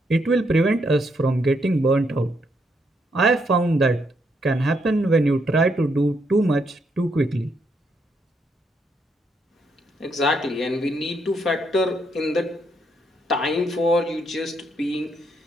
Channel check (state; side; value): normal; both; correlation 0.76